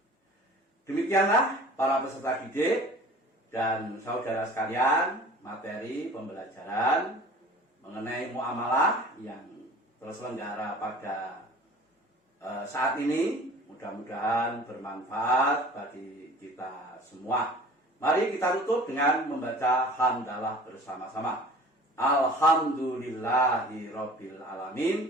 Demikianlah para peserta didik dan saudara sekalian, materi pembelajaran mengenai muamalah yang terselenggara pada saat ini. Mudah-mudahan bermanfaat bagi kita semua. Mari kita tutup dengan membaca hamdalah bersama-sama. Alhamdulillahirabbil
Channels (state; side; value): normal; both; correlation 0.45